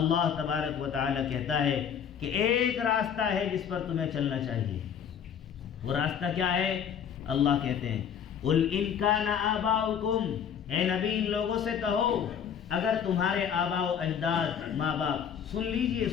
تبارک و تعالی کہتا ہے کہ ایک راستہ ہے جس پر تمہیں چلنا چاہیے۔ وہ راستہ کیا ہے؟ اللہ کہتے ہیں قُلْ إِنْ كَانَ آبَاؤُكُمْ، اے نبی ان لوگوں سے کہو اگر تمہارے آباء و اجداد ماں باپ، سن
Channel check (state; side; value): quieter; right; 8.1 dB